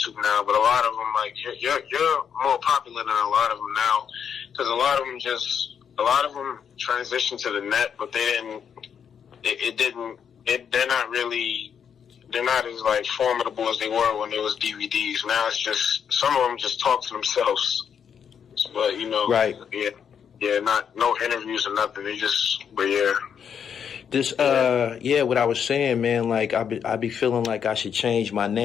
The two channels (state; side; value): quieter; right; 7.7 dB